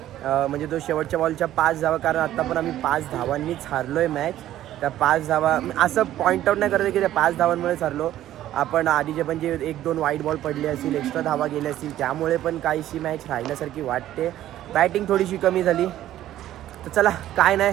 म्हणजे तो शेवटच्या बॉलच्या 5 धावा, कारण आत्ता पण आम्ही 5 धावांनीच हारलो आहे मॅच. त्या 5 धावा असं पॉईंट आउट नाही करत की त्या 5 धावांमुळेच हारलो आपण. आधीचे पण जे 1-2 वाईट बॉल पडले असतील, एक्स्ट्रा धावा गेल्या असतील, त्यामुळे पण काहीशी मॅच राहिल्यासारखी वाटते. बॅटिंग थोडीशी कमी झाली. तर चला काय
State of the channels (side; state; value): left; quieter; 13.0 dB